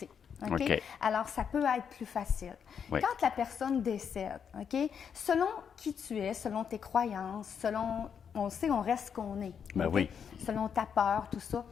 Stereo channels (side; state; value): right; quieter; 7.3 dB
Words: Alors, ça peut être plus facile. Quand la personne décède, selon qui tu es, selon tes croyances, selon... On sait, on reste ce qu'on est. Selon ta peur, tout ça.